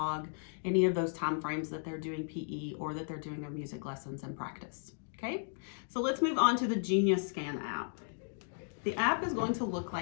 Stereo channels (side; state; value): right; silent; digital silence